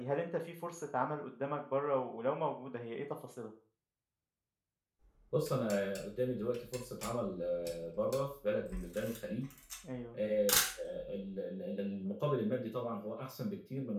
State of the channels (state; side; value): identical; both; correlation 1.00